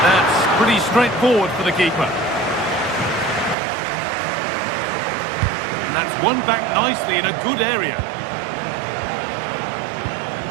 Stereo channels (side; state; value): left; drops out; at 3.6 s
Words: that's pretty straightforward for the keeper. And that's won back nicely in a good area.